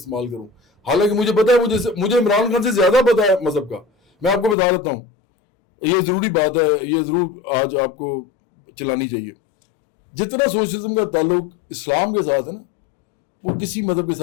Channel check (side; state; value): right; drops out; at 4.5 s